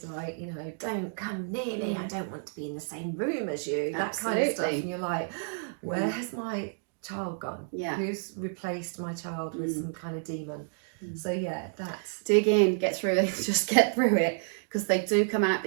like, you know, don't come near me, I don't want to be in the same room as you, that kind of stuff, and you're like, where has my child gone? Who's replaced my child with some kind of demon? So that's, dig in, get through it, just get through it, because they do come out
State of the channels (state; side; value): silent; left; digital silence